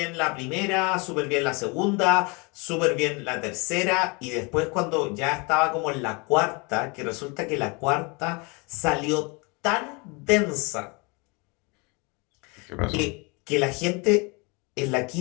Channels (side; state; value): right; quieter; 29.6 dB